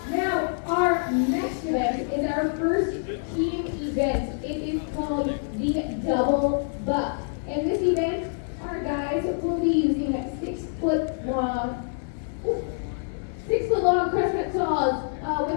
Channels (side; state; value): right; silent; 56 dB below the other